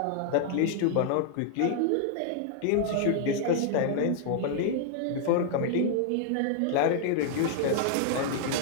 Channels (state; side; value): different; both; correlation -0.01